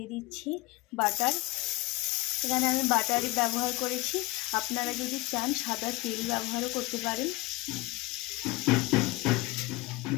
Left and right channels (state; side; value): quieter; right; 21.5 dB